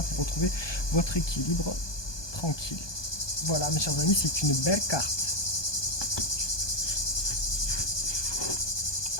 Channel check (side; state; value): right; late; 1.2 ms